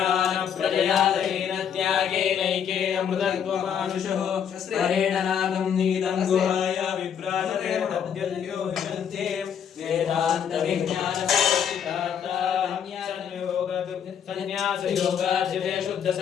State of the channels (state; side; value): quieter; right; 8.3 dB